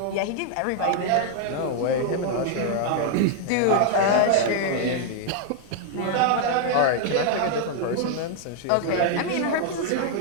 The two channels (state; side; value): different; both; correlation 0.00